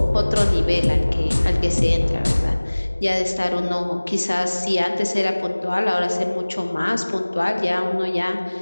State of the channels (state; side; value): inverted; both; correlation -1.00